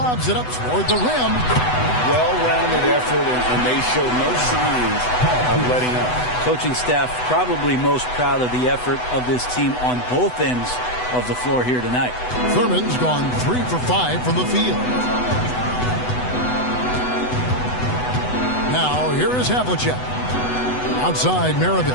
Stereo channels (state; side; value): late; right; 8.0 ms